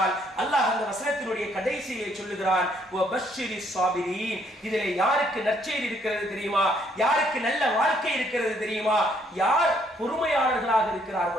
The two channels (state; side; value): normal; both; correlation 0.68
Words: அல்லாஹ் அந்த வசனத்தினுடைய கடைசியை சொல்லுகிறான், இதிலே யாருக்கு நற்செய்தி இருக்கிறது தெரியுமா, யாருக்கு நல்ல வாழ்க்கை இருக்கிறது தெரியுமா, யார் பொறுமையாளர்களாக